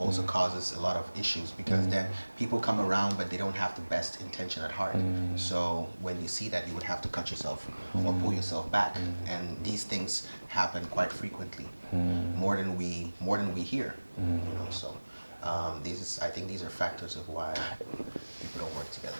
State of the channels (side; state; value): both; inverted; correlation -1.00